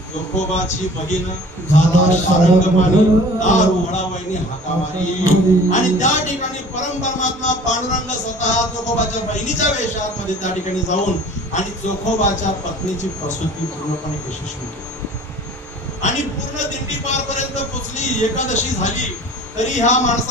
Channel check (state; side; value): normal; both; correlation 0.46